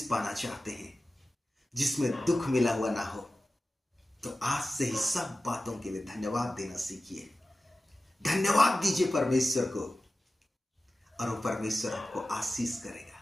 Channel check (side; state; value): both; normal; correlation 0.95